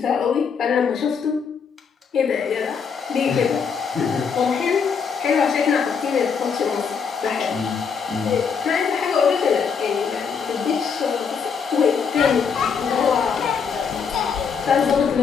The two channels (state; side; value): quieter; right; 6.2 dB